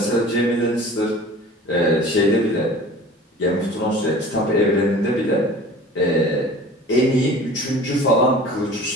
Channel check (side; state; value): both; normal; correlation 0.43